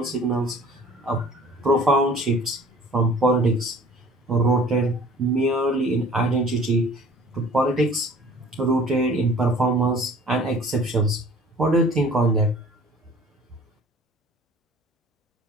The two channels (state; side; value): normal; both; correlation 0.49